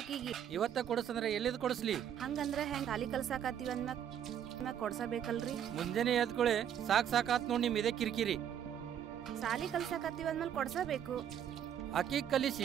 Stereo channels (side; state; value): left; quieter; 9.4 dB